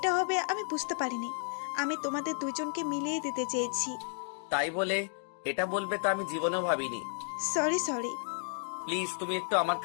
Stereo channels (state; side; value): silent; right; 56 dB below the other